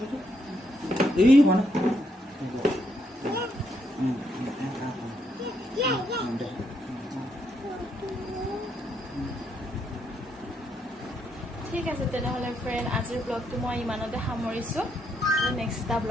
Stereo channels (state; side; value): normal; both; correlation 0.76